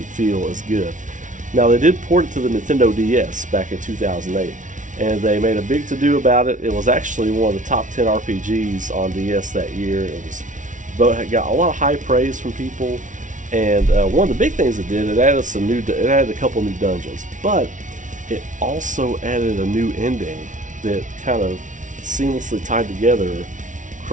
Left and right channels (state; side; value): late; left; 0.37 ms